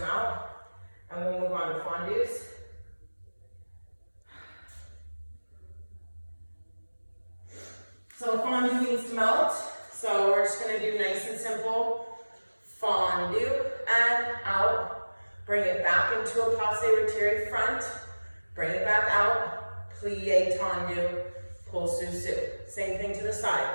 out. And we'll move on to fondues. So fondue needs to melt. So we're just gonna do nice and simple. Fondue and out. Bring it back into a passe retiré front. Bring it back out. Plie tendu. Pull sous. Same thing to the side.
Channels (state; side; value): inverted; both; correlation -1.00